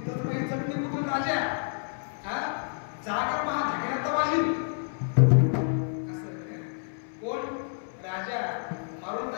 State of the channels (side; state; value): right; silent; 59 dB below the other